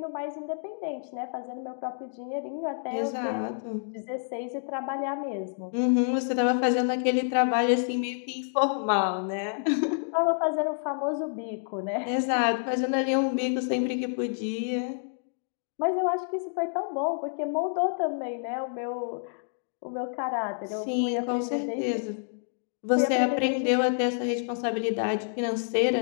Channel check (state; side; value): silent; right; digital silence